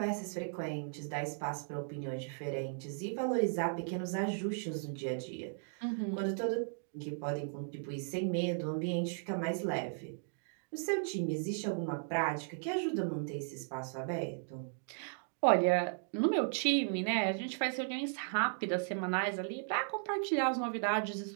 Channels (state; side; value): silent; left; digital silence